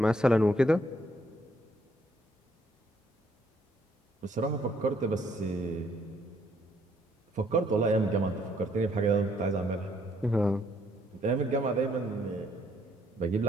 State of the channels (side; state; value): both; normal; correlation 0.68